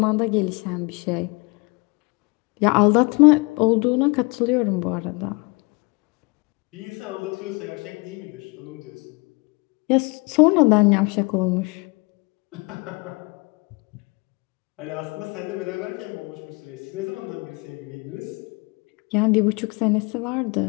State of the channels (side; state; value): right; quieter; 28.8 dB